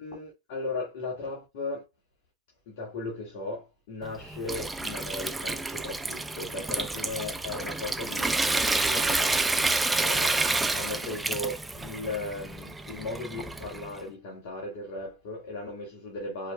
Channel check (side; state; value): both; normal; correlation 0.65